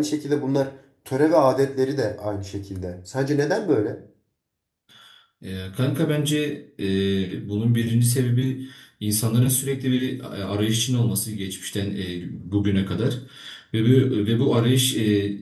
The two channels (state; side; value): identical; both; correlation 1.00